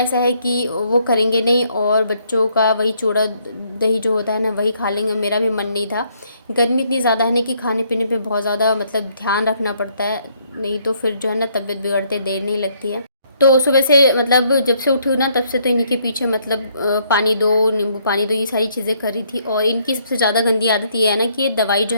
है कि वो करेंगे नहीं, और बच्चों का वही चूड़ा दही जो होता है ना, वही खा लेंगे। मेरा भी मन नहीं था। गर्मी इतनी ज़्यादा है ना कि खाने पीने पे बहुत ज़्यादा मतलब ध्यान रखना पड़ता है, नहीं तो फिर जो है ना तबीयत बिगड़ते देर नहीं लगती है। तो सुबह से मतलब जब से उठी हूँ ना, तब से तो इन्हीं के पीछे मतलब पानी दो, नींबू पानी दो, ये सारी चीज़ें करी थी। और इनकी सबसे ज़्यादा गंदी आदत ये है ना कि ये दवाई जो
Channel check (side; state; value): both; inverted; correlation -0.69